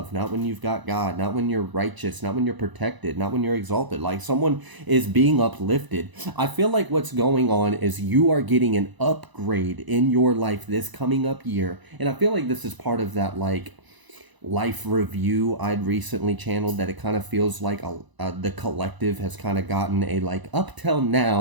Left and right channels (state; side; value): late; left; 1.0 ms